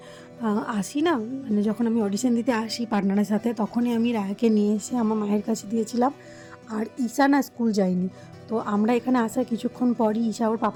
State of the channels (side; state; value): both; identical; correlation 1.00